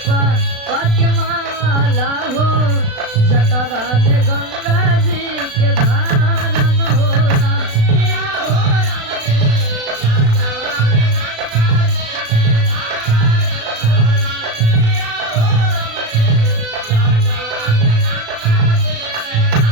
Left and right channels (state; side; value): late; left; 36 ms